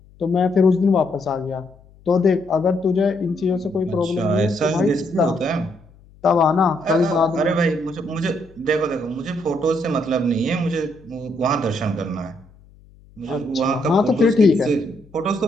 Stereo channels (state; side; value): noise; left; hum, 26 dB below the sound